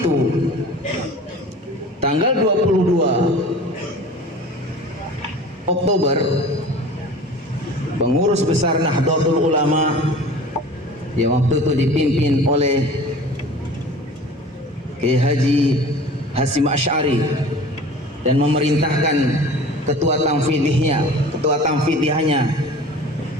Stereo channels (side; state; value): both; normal; correlation 0.41